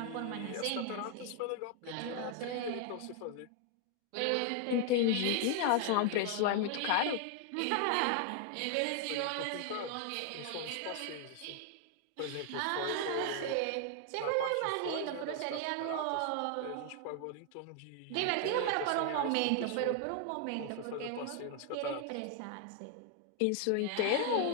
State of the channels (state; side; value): different; both; correlation 0.00